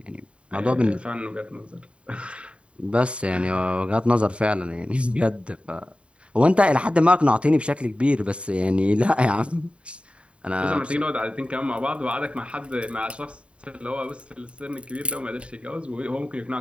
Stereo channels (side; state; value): left; late; 0.059 ms